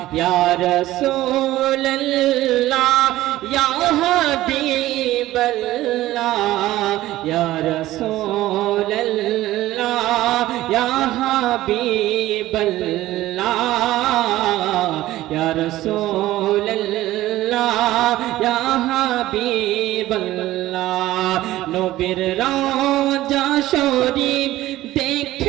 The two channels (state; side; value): quieter; left; 15.7 dB